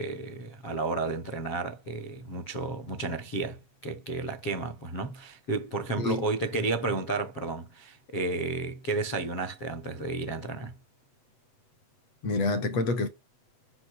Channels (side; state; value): right; late; 8.0 ms